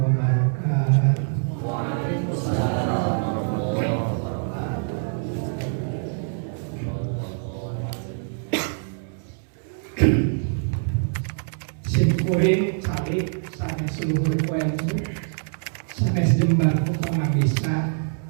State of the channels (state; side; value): silent; left; digital silence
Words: wabarakatuh. Waalaikumsalam warahmatullahi wabarakatuh. Simkuring calik sanes seluruh ilmu sanes jembar pangabisa